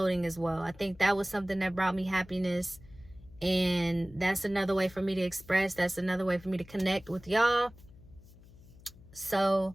as well. I think that was something that brought me happiness, and that's another way for me to express. That's another way for me to connect with y'all. So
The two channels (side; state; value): left; noise; hum, 22 dB below the sound